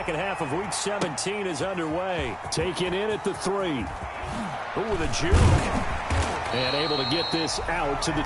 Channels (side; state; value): both; identical; correlation 1.00